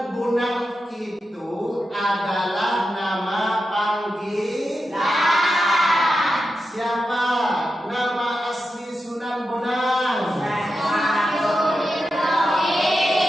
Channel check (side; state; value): both; normal; correlation 0.89